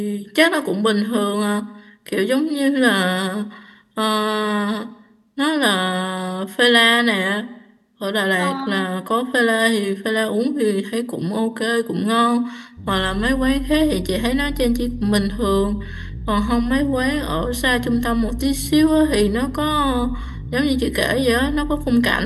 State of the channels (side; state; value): both; identical; correlation 1.00